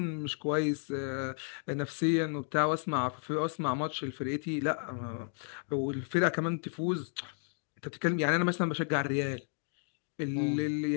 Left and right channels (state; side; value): silent; right; 56 dB below the other